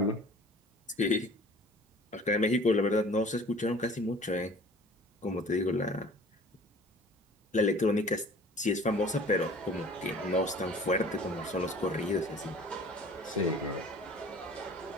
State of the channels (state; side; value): normal; both; correlation 0.47